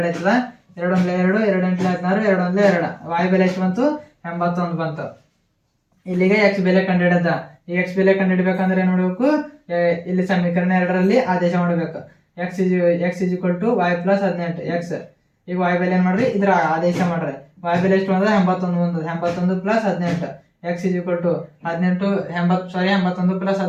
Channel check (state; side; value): identical; both; correlation 1.00